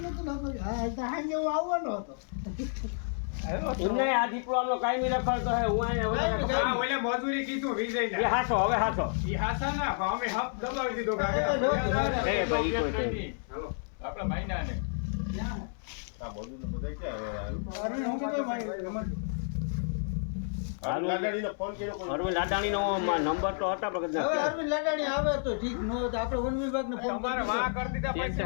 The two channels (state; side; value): silent; right; 57 dB below the other